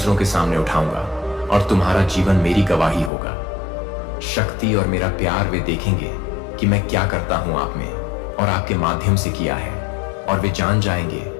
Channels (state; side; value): drops out; right; at 3.1 s